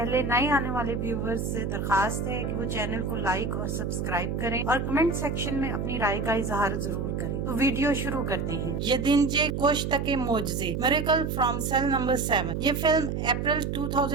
नए आने वाले व्यूवर्स से दरखास्त है कि वो चैनल को लाइक और सब्सक्राइब करें और कमेंट सेक्शन में अपनी राय का इजहार जरूर करें। तो वीडियो शुरू करते हैं। यदिंजे कोश्तके मोजज़े मिरेकल फ्रॉम सेल नंबर 7। ये फिल्म अप्रैल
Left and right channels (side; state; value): right; noise; hum, 2 dB below the sound